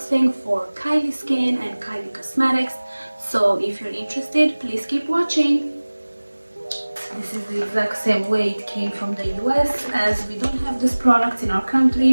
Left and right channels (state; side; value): inverted; both; correlation -1.00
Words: for Kylie Skin and Kylie Cosmetics. So if you're interested, please keep watching. This is the exact same way it came from the US, as we don't have this product in our